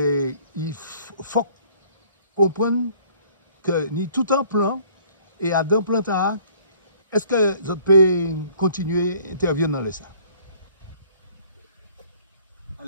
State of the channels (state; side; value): inverted; both; correlation -0.56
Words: il faut comprendre que ni tout un plan et à d'un plan est-ce que vous pouvez continuer à intervenir dans les ça?